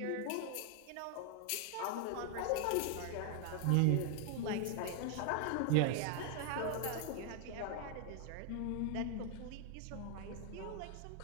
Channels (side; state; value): both; different; correlation 0.00